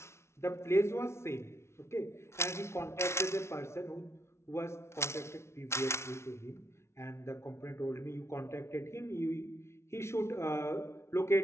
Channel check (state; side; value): late; right; 0.13 ms